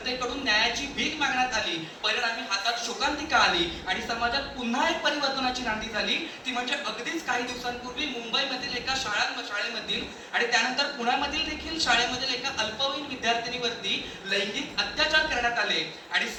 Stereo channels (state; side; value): identical; both; correlation 1.00